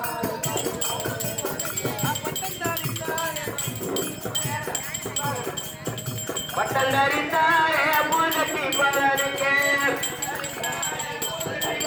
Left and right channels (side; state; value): both; identical; correlation 1.00